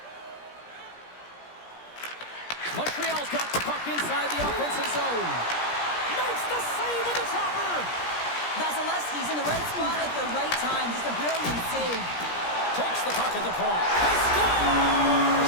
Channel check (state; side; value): late; right; 17 ms